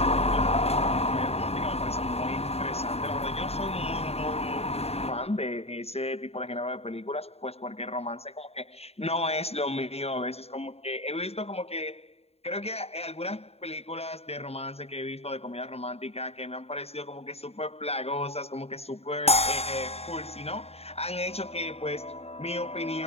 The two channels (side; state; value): right; late; 0.30 ms